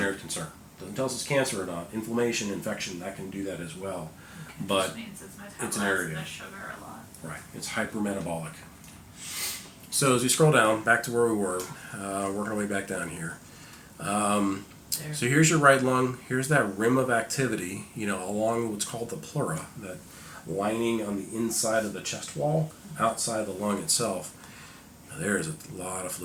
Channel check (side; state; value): both; identical; correlation 1.00